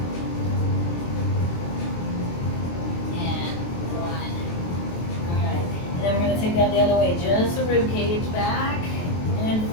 and 1. All right, and then we're going to take that the other way, just the rib cage back and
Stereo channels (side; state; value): right; late; 23 ms